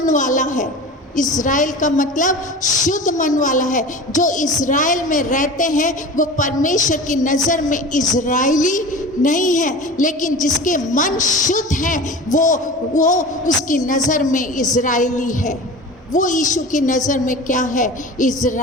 वाला है। इज़राइल का मतलब शुद्ध मन वाला है। जो इज़राइल में रहते हैं वो परमेश्वर की नज़र में इज़राइली नहीं है, लेकिन जिसके मन शुद्ध हैं वो उसकी नज़र में इज़राइली है। वो यीशु की नज़र में क्या है?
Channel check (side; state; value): both; normal; correlation 0.34